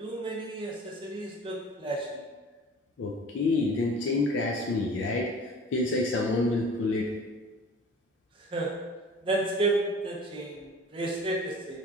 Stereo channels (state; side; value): normal; both; correlation 0.44